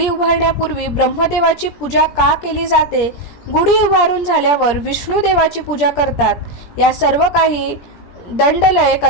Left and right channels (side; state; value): right; late; 17 ms